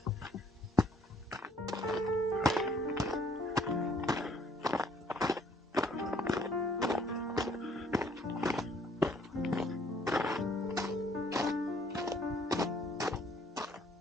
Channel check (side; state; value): both; normal; correlation 0.63